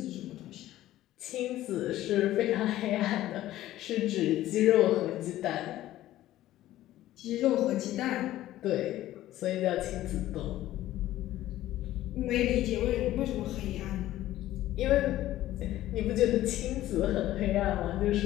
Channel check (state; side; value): quieter; right; 14.5 dB